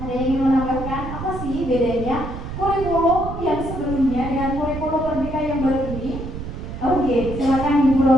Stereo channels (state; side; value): noise; right; rumble, 8 dB below the sound